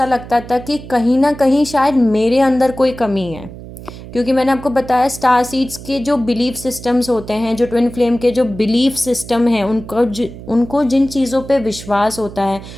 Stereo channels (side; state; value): right; noise; hum, 14 dB below the sound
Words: लगता था कि कहीं ना कहीं शायद मेरे अंदर कोई कमी है, क्योंकि मैंने आपको बताया स्टार सीड्स के जो बिलीफ सिस्टम्स होते हैं, जो ट्विन फ्लेम के जो बिलीफ सिस्टम है, उनको जिन चीज़ों पे विश्वास होता है,